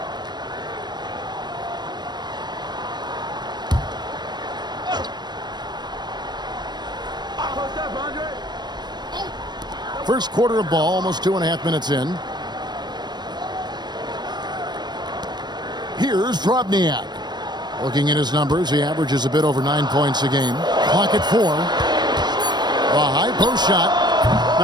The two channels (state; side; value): late; left; 0.21 ms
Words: First quarter of ball, almost 2.5 minutes in. Here's Drobniak. Looking at his numbers, he averages a bit over 9 points a game. Clock at 4. A high post shot.